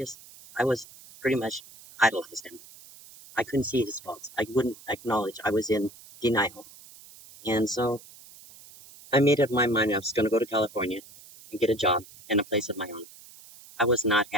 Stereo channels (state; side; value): noise; right; hiss, 21 dB below the sound